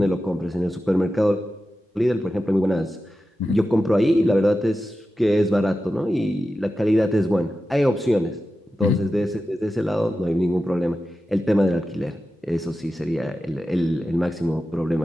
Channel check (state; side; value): normal; both; correlation 0.92